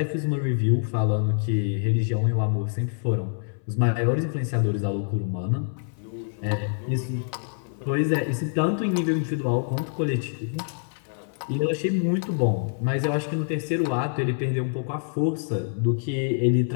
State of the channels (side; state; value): right; silent; 59 dB below the other